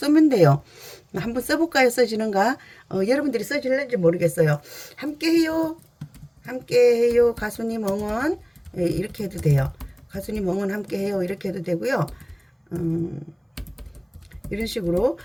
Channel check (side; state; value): both; identical; correlation 1.00